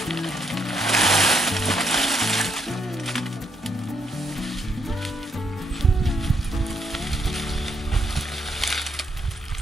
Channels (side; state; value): both; normal; correlation 0.75